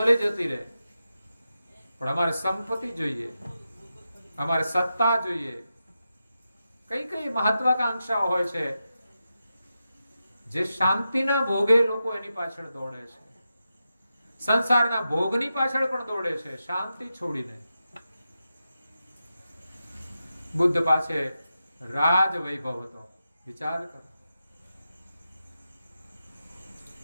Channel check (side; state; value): both; inverted; correlation -0.89